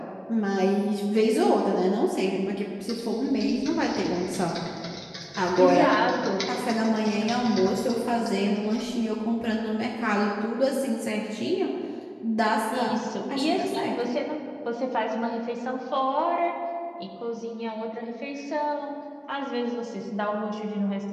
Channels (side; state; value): both; identical; correlation 1.00